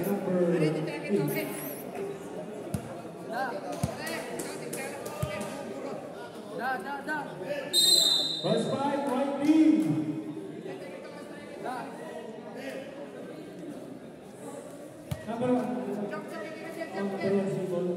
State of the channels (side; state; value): both; identical; correlation 1.00